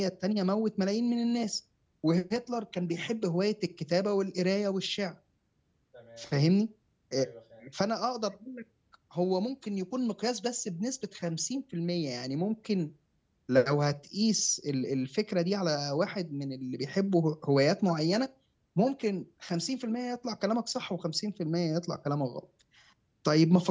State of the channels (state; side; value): identical; both; correlation 1.00